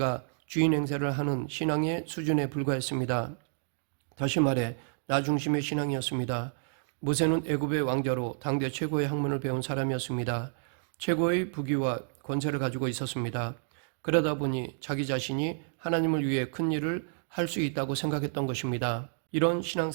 주인 행세를 하는 신앙의 수준에 불과했습니다. 다시 말해 나 중심의 신앙이었습니다. 모세는 애굽의 왕자로 당대 최고의 학문을 배운 사람이었습니다. 최고의 부귀와 권세를 가지고 있었습니다. 그러다 보니 자기 자신이 하나님을 위해 큰 일을 할 수 있다고 생각했던 것입니다. 이런 신앙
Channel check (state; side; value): silent; left; digital silence